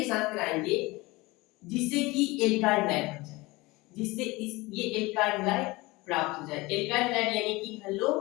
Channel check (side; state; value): right; quieter; 22.2 dB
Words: साथ कराएंगे जिससे कि एल्काइल हाइड बन जाए, जिससे ये एल्काइल हाइड प्राप्त हो जाए। एल्काइल हाइड यानी कि हेलो